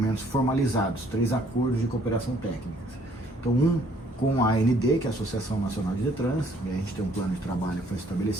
formalizados, 3 acordos de cooperação técnica. Então, um com a AND, que é a Associação Nacional de Detran, e a gente tem um plano de trabalho que foi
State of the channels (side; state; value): both; normal; correlation 0.62